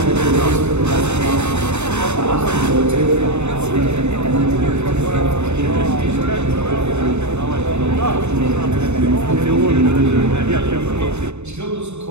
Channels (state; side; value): late; left; 0.82 ms